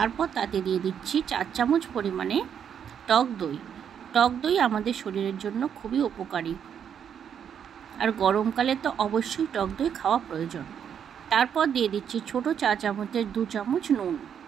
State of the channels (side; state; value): left; quieter; 8.3 dB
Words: তাতে দিয়ে দিচ্ছি 4 চামচ পরিমাণে টক দই। টক দই আমাদের শরীরের জন্য খুবই উপকারী, আর গরমকালে তো অবশ্যই টক দই খাওয়া প্রয়োজন। তারপর দিয়ে দিচ্ছি ছোট চা চামচের 2 চামচ নুন,